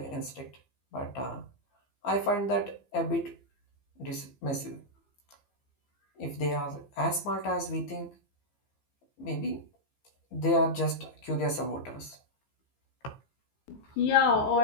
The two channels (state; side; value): late; right; 15 ms